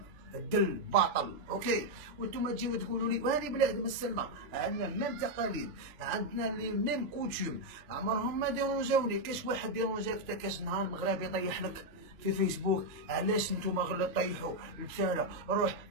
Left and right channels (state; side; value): late; left; 3.0 ms